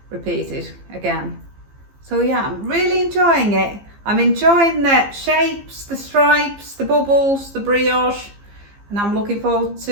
repeated again. So yeah, I'm really enjoying it. I'm enjoying the shapes, the stripes, the bubbles, the brioche, and I'm looking forward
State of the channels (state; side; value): late; left; 15 ms